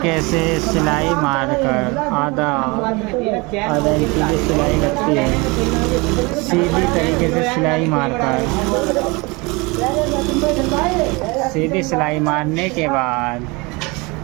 से सिलाई मारकर आधा इंच की सिलाई लगती है। सीधी तरीके से सिलाई मारकर सीधी सिलाई मारने के बाद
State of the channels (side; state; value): left; quieter; 26.3 dB